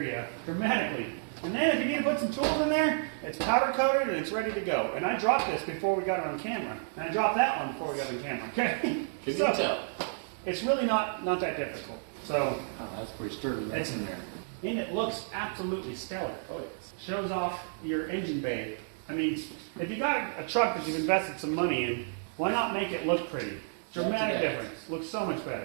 dramatically. And then if you need to put some tools in there, it's powder coated and it's ready to go. And I dropped this before we got it on camera. And I dropped that one before we got it on camera, okay? Can you So, tell? it's really not that difficult. So, Oh, that's pretty sturdy. That's in there. and it looks absolutely stellar. Oh, yes. Shows off your engine bay. I mean, if you got a truck that you've invested some money in, why not make it look pretty? Dramatic difference. Looks so much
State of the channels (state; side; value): silent; left; digital silence